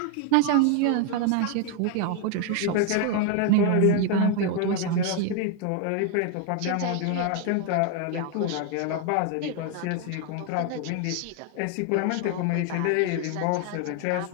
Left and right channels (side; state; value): both; different; correlation 0.01